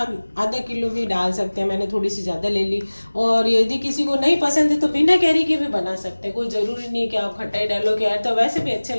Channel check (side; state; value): both; inverted; correlation -1.00